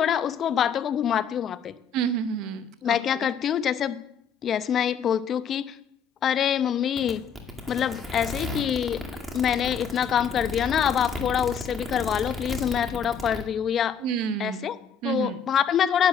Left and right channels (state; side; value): quieter; right; 6.8 dB